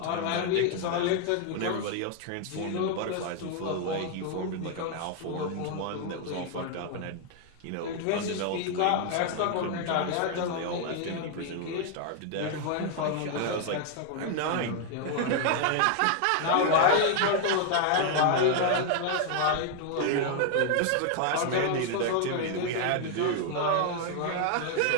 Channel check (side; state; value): both; different; correlation 0.00